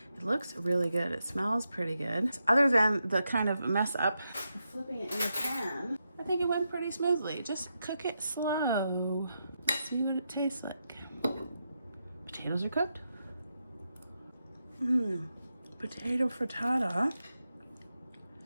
It looks really good. It smells pretty good. Other than the kind of mess up flipping it in the pan, I think it went pretty smoothly. Just cook it slow. See what it tastes like. Potatoes are cooked. Potato frittata.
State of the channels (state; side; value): inverted; both; correlation -0.86